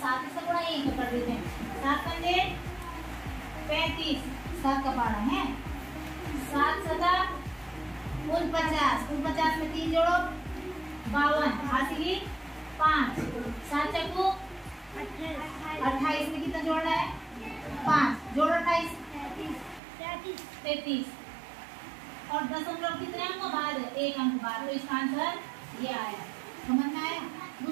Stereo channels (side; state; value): left; drops out; at 19.8 s